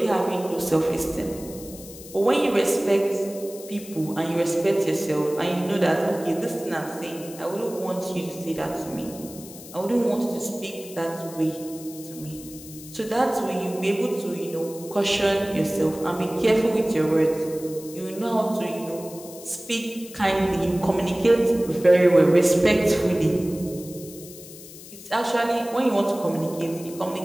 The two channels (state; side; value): noise; left; hiss, 16 dB below the sound